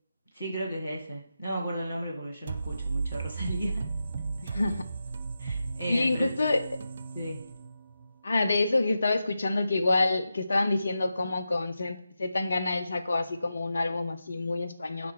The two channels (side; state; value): both; inverted; correlation -0.89